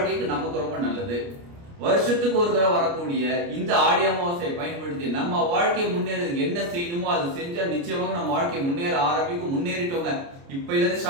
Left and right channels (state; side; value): late; left; 29 ms